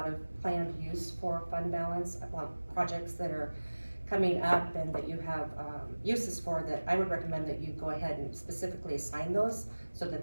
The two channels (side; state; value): both; inverted; correlation -1.00